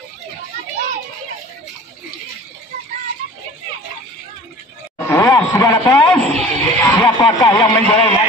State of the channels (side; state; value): both; normal; correlation 0.44